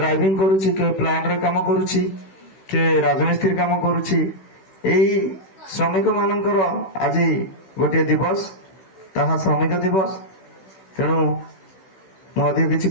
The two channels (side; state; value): right; late; 16 ms